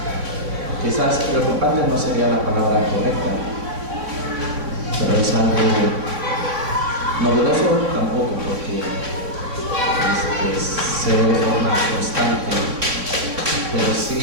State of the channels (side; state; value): left; late; 3.5 ms